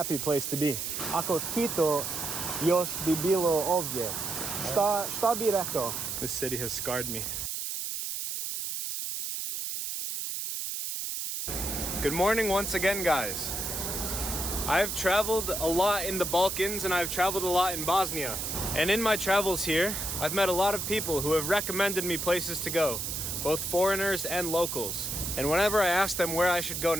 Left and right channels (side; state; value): right; noise; hiss, 3 dB below the sound